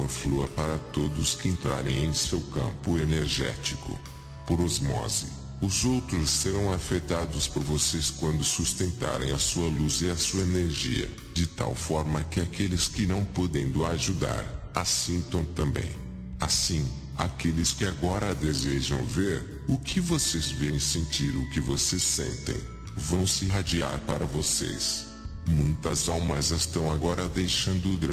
flua para todos que entrarem em seu campo energético. Por osmose, Os outros serão afetados por vocês quando sustentarem a sua luz e a sua energia, de tal forma que aqueles que não podendo ajudar, assintam também. Assim, aqueles que agora desejam ver o que vocês veem e sentir o que vocês sentem, vão se irradiar para vocês. Muitas almas estão agora deixando o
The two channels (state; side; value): identical; both; correlation 1.00